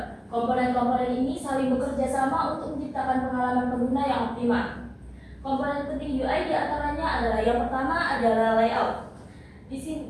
Komponen-komponen ini saling bekerja sama untuk menciptakan pengalaman pengguna yang optimal. Komponen penting UI diantaranya adalah yang pertama adalah layout. Di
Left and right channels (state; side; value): identical; both; correlation 1.00